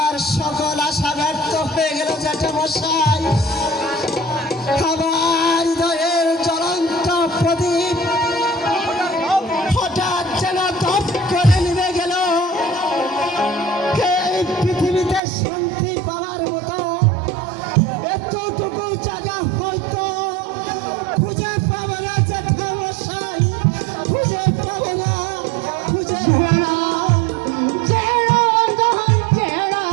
সকল আশা ব্যর্থ হয়ে গেল জ্যাঠামশাই। আমার হৃদয়ের জ্বলন্ত প্রদীপ হঠাৎ যেন দপ করে নিভে গেল। এই পৃথিবীতে শান্তি পাওয়ার মতো এতটুকু জায়গা হয়তো খুঁজে পাবো না জ্যাঠামশাই, খুঁজে পাবো না, খুঁজে পাবো না।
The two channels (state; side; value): drops out; left; at 15.2 s